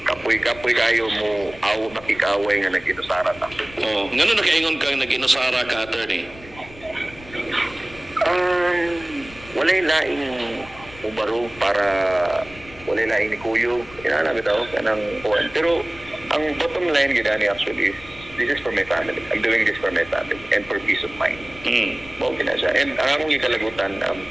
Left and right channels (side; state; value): left; noise; rumble, 20 dB below the sound